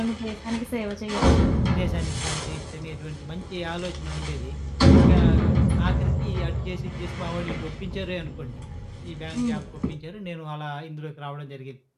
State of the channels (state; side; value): identical; both; correlation 1.00